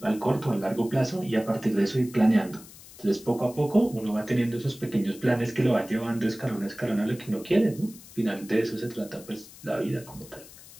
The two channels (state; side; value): noise; left; hiss, 19 dB below the sound